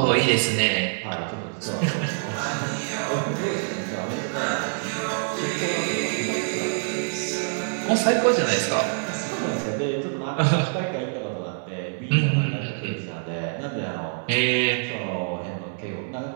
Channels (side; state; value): left; silent; 61 dB below the other